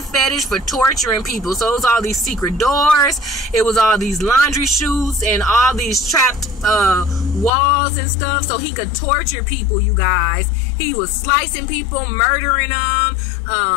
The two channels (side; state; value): right; drops out; at 7.5 s